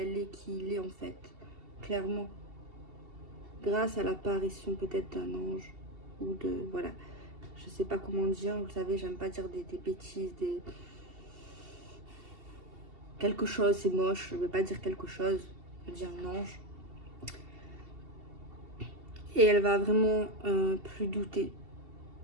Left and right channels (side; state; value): left; late; 2.7 ms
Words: est, qui il est en fait, clairement. Grâce à l'apparition peut-être d'un ange ou de, voilà, je sais pas comment dire, vous savez, j'aime pas dire des bêtises, quelque chose, c'est moche, je veux pas dire quelque chose, je veux dire un ange. Et elle va vraiment plus douter